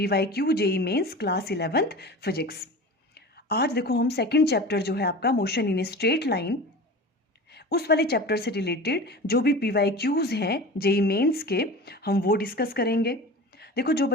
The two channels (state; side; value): normal; both; correlation 0.34